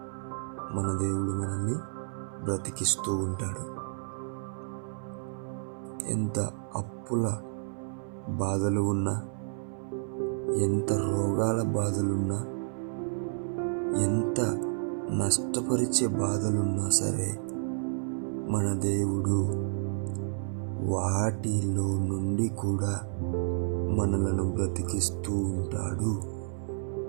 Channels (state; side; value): silent; left; 57 dB below the other